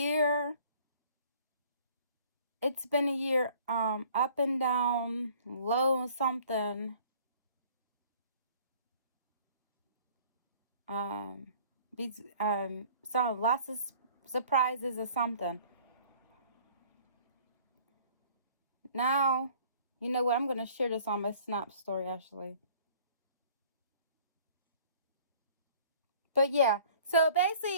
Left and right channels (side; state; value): both; inverted; correlation -0.53